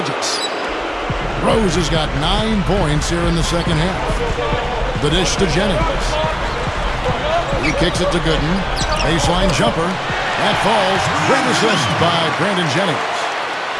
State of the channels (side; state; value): both; identical; correlation 1.00